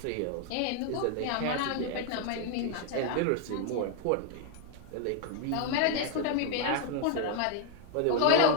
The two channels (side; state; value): both; different; correlation 0.00